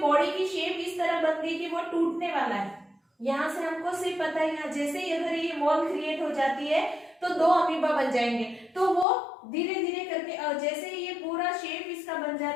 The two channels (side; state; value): right; drops out; at 9.1 s